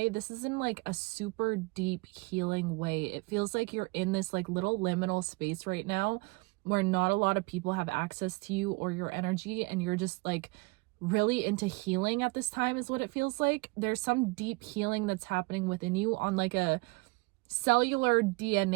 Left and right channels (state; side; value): quieter; left; 26.9 dB